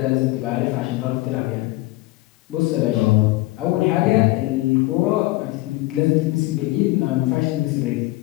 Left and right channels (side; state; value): right; quieter; 19.7 dB